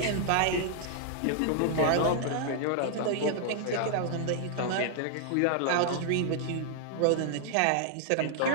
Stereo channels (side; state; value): both; different; correlation -0.01